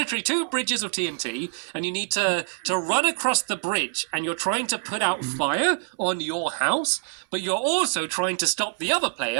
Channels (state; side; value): silent; left; 62 dB below the other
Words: two bridges of TNT, and you need to run across the bridge, and you're trying to put out fire on your house, but you're also trying to stop the other